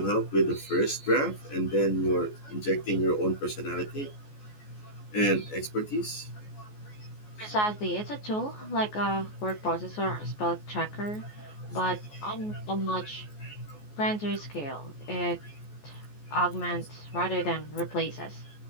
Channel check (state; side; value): late; right; 14 ms